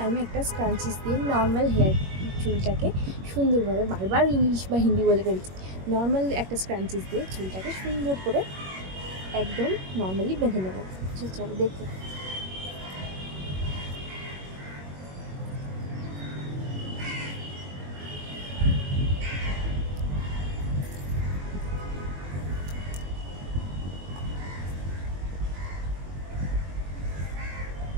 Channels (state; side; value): late; left; 21 ms